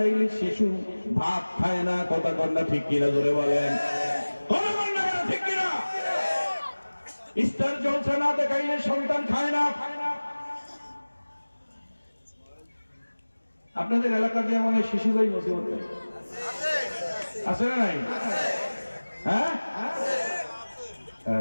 শিশু ভাত খায় না, কথা কন্যা ঠিক কিনা জোরে বলেন, ঠিক কিনা? স্টার জলসা না দেখাইলে সন্তান খায় না। আপনাদের এলাকা দিয়ে মনে শিশু ভাই মুসিবত নেই, আছে না নাই? হ্যাঁ,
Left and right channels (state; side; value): inverted; both; correlation -1.00